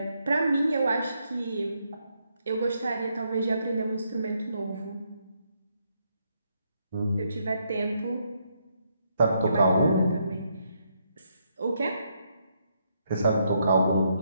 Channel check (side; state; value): both; inverted; correlation -0.76